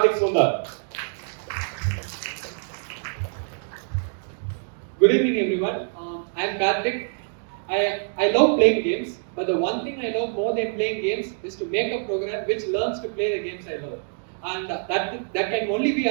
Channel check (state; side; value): silent; left; 61 dB below the other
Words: Sundar. Good evening, everyone. I am Karthik. I love playing games, but the one thing I love more than playing games is to make a program which learns to play the games I love. And that can only be